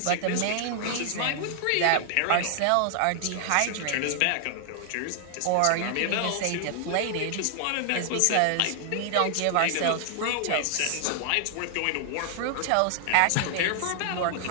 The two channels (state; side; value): different; both; correlation 0.00